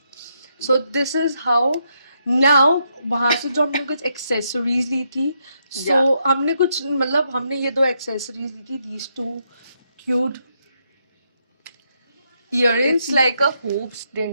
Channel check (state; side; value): inverted; both; correlation -0.78